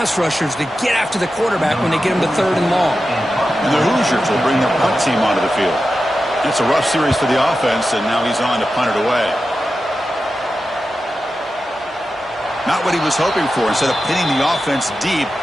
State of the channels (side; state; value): both; normal; correlation 0.92